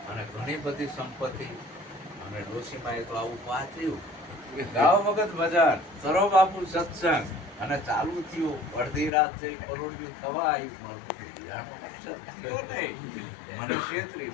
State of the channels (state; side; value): drops out; right; at 9.1 s